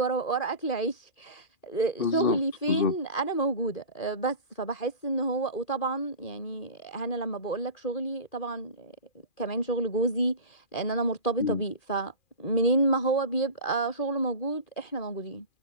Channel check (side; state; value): right; late; 2.4 ms